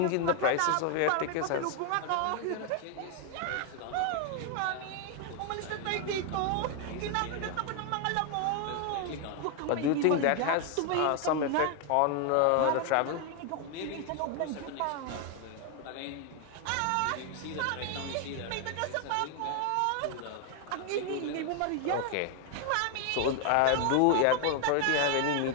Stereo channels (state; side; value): different; both; correlation 0.00